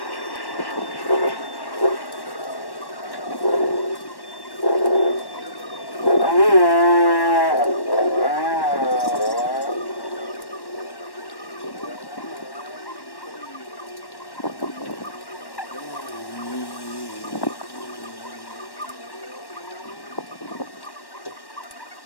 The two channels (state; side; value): late; right; 1.1 ms